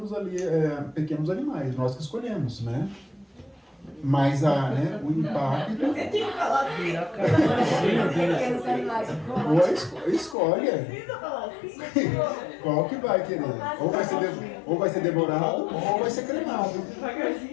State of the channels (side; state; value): right; drops out; at 10.4 s